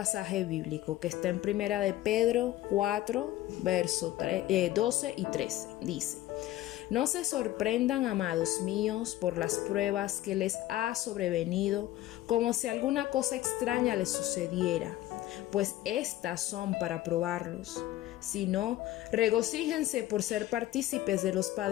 bíblico que está en Primera de Pedro 4, versos 12 y 13. Dice: No se sorprendan, amados míos, por las pruebas que les ha sobrevenido, como si alguna cosa extraña les sucediera, pues estas son para probarlos. Sino, regocíjense por ser partícipes de los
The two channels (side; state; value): right; quieter; 15.0 dB